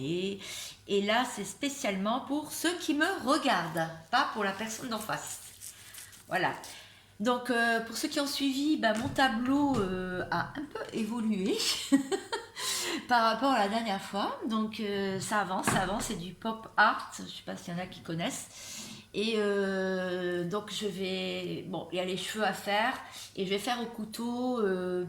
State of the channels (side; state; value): both; identical; correlation 1.00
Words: Et là, c'est spécialement pour ceux qui me regardent, pas pour la personne d'en face. Voilà. Donc, pour ceux qui ont suivi, bah, mon tableau a un peu évolué par rapport à la dernière fois. Donc, ça avance, c'est du pop art. Je ne sais pas s'il y en a qui connaissent. Et donc je vais... Bon, il y a les cheveux à faire. Et je vais faire au couteau.